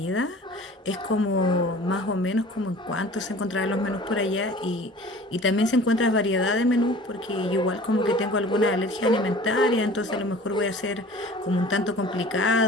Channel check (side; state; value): both; normal; correlation 0.45